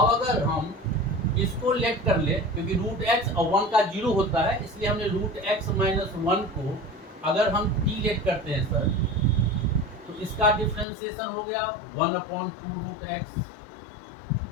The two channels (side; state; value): right; drops out; at 10.9 s